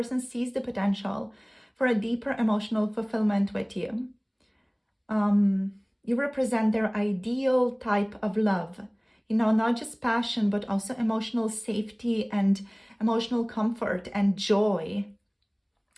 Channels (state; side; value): identical; both; correlation 1.00